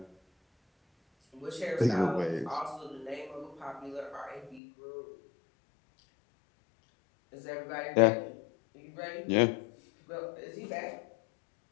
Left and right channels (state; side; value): drops out; right; at 4.6 s